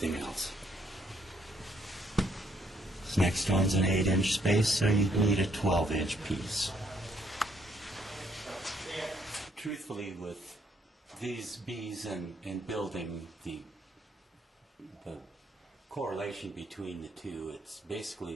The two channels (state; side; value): normal; both; correlation 0.69